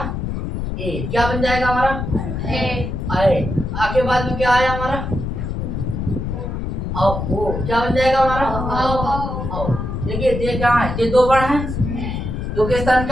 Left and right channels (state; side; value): noise; left; rumble, 4 dB below the sound